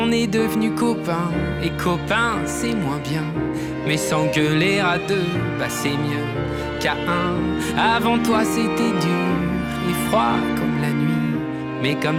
est devenus copains, et copains c'est moins bien. Mais s'engueuler à deux, bah c'est mieux qu'à un. Avant toi c'était dur et froid comme la nuit, mais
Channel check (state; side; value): identical; both; correlation 1.00